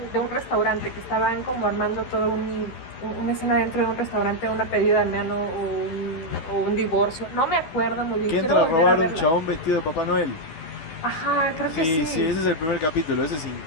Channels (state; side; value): late; right; 12 ms